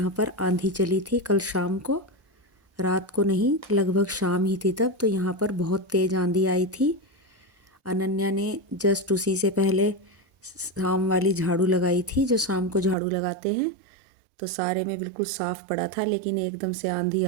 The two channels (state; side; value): drops out; left; at 13.0 s